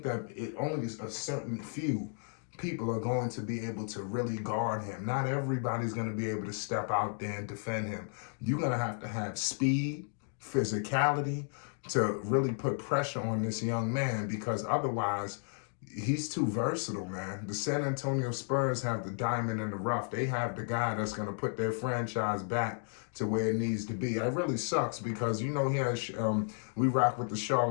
that only a certain few people are going to be able to really guard him. Not everybody's going to be able to step out there and defend him. You're going to have speed, physicality to really put pressure on this young man, because otherwise he's too versatile, man. The San Antonio Spurs have the diamond in the rough. They have the guy that's going to put their franchise back to where it needs to be. It really sucks because, here we rock with the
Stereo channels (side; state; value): right; silent; 56 dB below the other